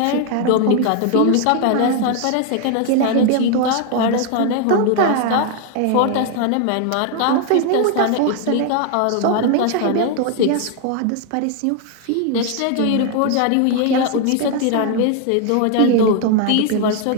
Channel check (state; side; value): different; both; correlation 0.00